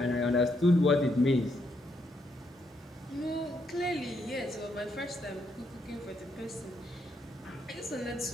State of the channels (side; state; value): both; normal; correlation 0.77